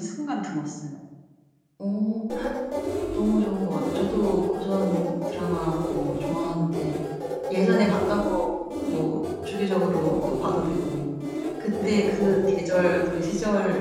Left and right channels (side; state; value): both; identical; correlation 1.00